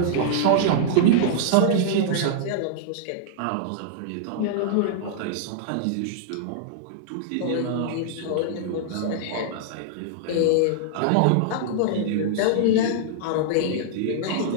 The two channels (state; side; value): different; both; correlation -0.01